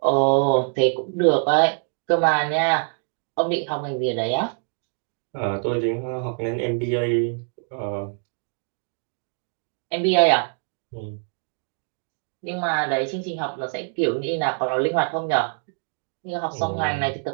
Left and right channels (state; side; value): silent; left; 55 dB below the other